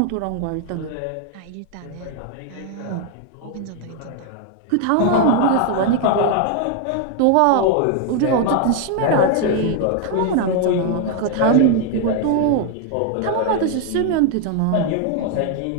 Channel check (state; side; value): different; both; correlation 0.00